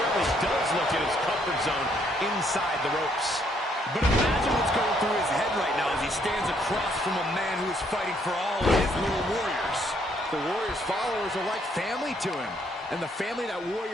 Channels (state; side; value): normal; both; correlation 0.69